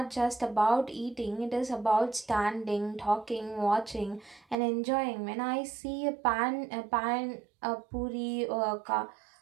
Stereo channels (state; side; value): drops out; left; at 4.5 s